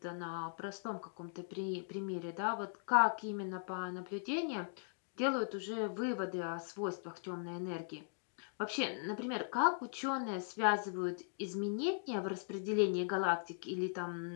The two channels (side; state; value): right; silent; digital silence